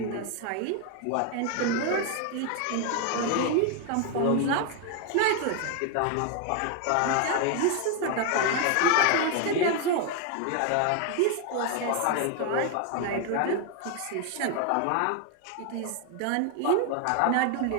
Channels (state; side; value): different; both; correlation 0.01